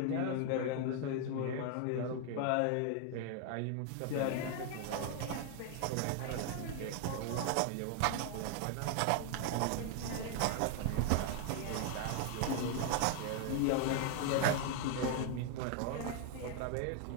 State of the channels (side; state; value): both; different; correlation 0.00